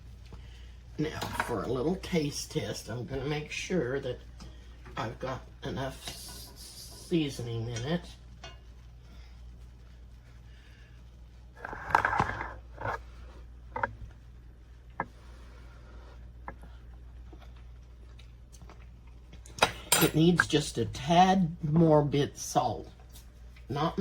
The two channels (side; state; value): both; identical; correlation 1.00